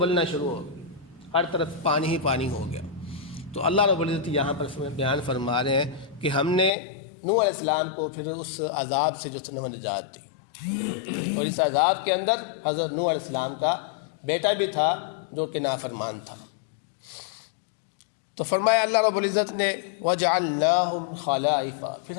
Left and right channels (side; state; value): right; drops out; at 6.7 s